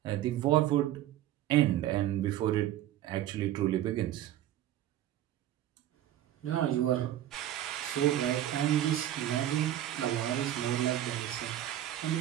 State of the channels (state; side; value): quieter; left; 12.7 dB